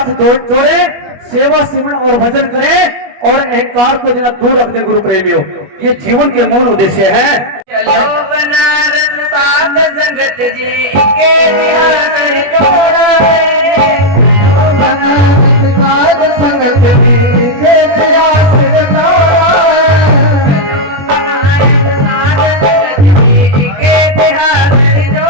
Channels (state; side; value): late; left; 21 ms